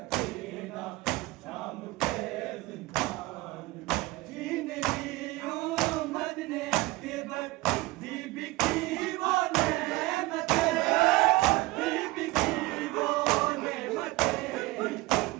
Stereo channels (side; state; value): left; quieter; 20.5 dB